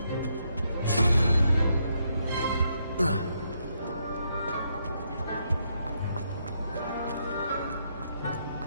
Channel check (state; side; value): inverted; both; correlation -0.77